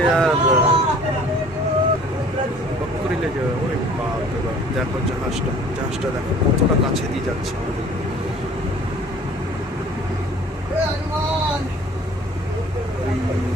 আর করিলে যে ওই বাপরে বাপ। দেখো জাহাজটা দেখো কতটা কাছে দিয়ে যাচ্ছে আমাদের।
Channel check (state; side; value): normal; both; correlation 0.51